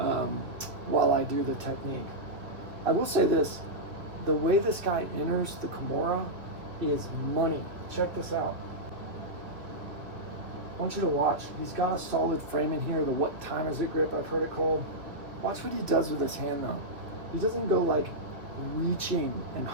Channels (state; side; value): late; left; 2.5 ms